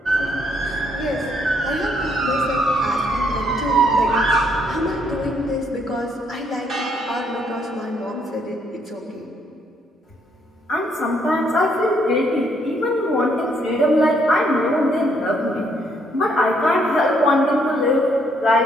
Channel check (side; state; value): both; normal; correlation 0.71